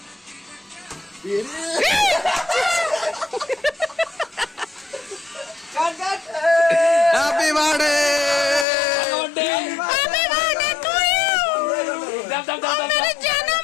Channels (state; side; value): drops out; right; at 8.7 s